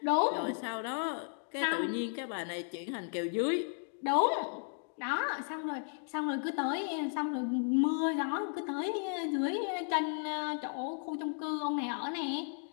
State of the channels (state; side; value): silent; right; 55 dB below the other